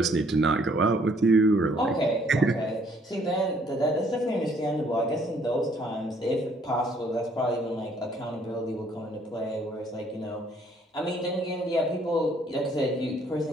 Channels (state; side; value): normal; both; correlation 0.63